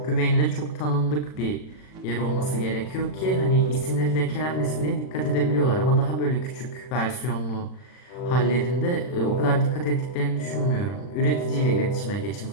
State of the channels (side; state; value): right; late; 40 ms